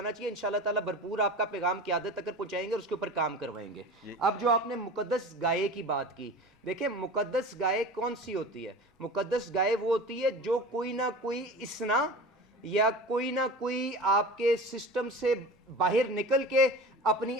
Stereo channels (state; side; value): normal; both; correlation 0.35